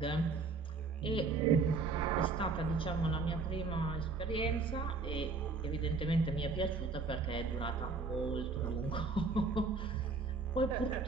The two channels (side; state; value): left; quieter; 4.3 dB